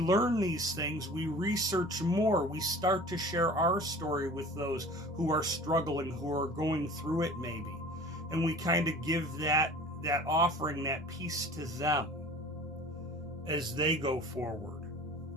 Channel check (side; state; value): both; normal; correlation 0.43